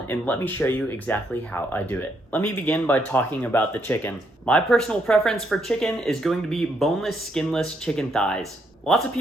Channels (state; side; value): normal; both; correlation 0.75